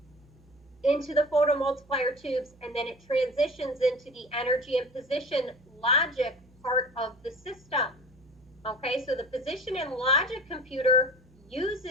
into the photomultiplier tubes, and then it transitions into the energy and position logic part of the system. Okay, so the position and logic computer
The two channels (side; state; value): right; noise; hum, 28 dB below the sound